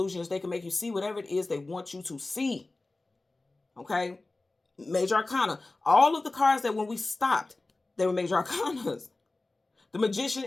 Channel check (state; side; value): quieter; right; 3.1 dB